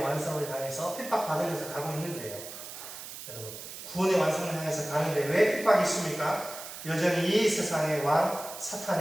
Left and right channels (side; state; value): right; noise; hiss, 11 dB below the sound